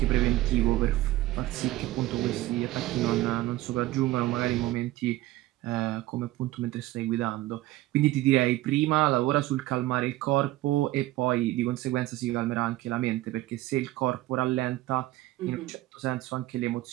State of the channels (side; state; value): left; quieter; 16.8 dB